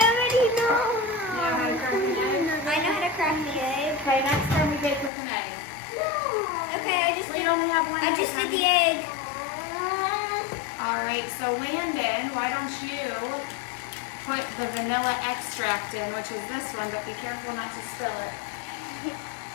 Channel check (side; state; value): right; drops out; at 5.1 s